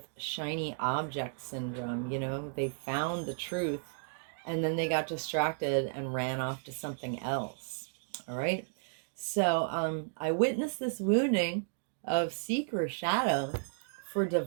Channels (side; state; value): left; silent; digital silence